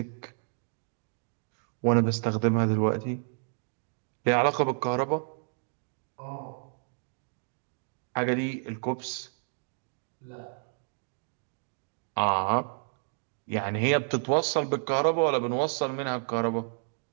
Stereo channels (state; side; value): silent; left; digital silence